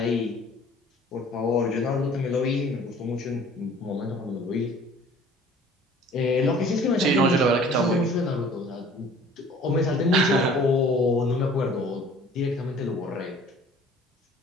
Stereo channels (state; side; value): normal; both; correlation 0.51